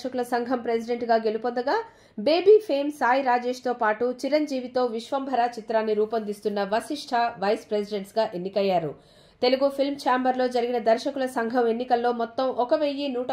సంఘం ప్రెసిడెంట్ గా గెలుపొందగా, బేబీ ఫేమ్ సాయి రాజేష్ తో పాటు చిరంజీవితో విశ్వంభర చిత్రాన్ని రూపొందిస్తున్న వశిష్ఠ వైస్ ప్రెసిడెంట్స్ గా ఎన్నికయ్యారు. తెలుగు ఫిల్మ్ ఛాంబర్లో జరిగిన దర్శకుల సంఘం ఎన్నికల్లో మొత్తం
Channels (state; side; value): identical; both; correlation 1.00